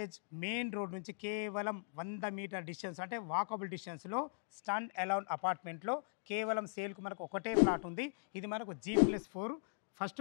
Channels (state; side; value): silent; right; digital silence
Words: మెయిన్ రోడ్ నుంచి కేవలం 100 మీటర్ డిస్టెన్స్, అంటే వాకబుల్ డిస్టెన్స్లో స్టాండ్ అలోన్ అపార్ట్మెంట్లో కేవలం సేల్కు మనకు ఒకటే ప్లాట్ ఉంది. ఇది మనకు G+4 ఫస్ట్